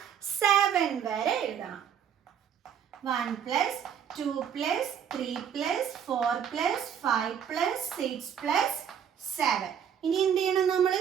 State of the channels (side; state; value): left; quieter; 8.4 dB